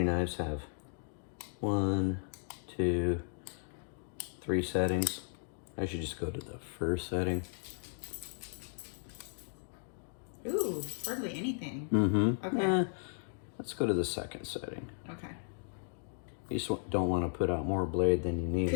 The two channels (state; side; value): silent; right; 54 dB below the other